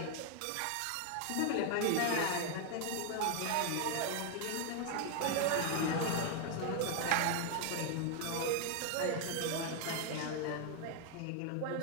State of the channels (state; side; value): different; both; correlation 0.01